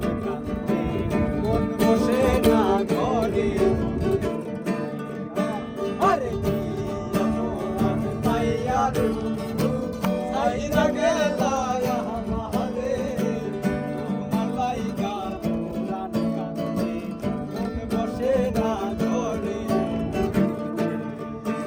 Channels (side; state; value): both; identical; correlation 1.00